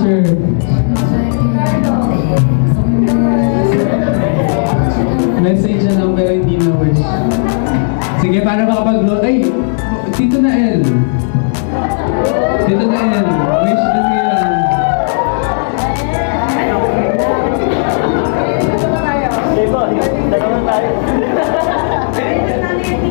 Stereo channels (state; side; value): silent; right; digital silence